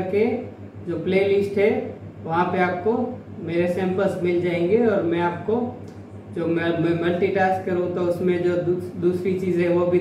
जो प्लेलिस्ट है वहाँ पे आपको मेरे सैंपल्स मिल जाएंगे। और मैं आपको जो मैं मल्टीटास्क करूँ तो उसमें जो दूसरी चीज़ें वो भी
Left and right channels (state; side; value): identical; both; correlation 1.00